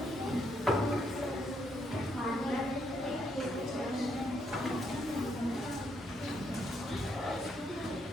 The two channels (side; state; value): both; normal; correlation 0.75